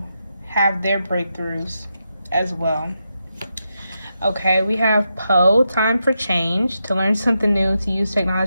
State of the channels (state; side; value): inverted; both; correlation -0.86